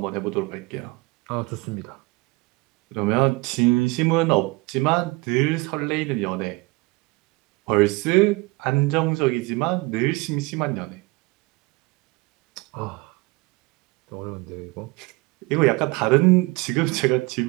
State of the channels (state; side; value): quieter; left; 23.9 dB